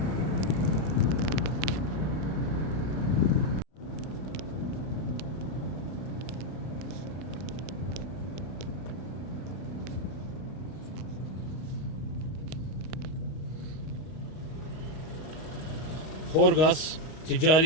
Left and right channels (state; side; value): late; right; 32 ms